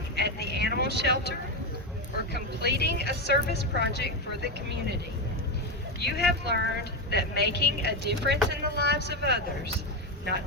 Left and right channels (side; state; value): both; normal; correlation 0.10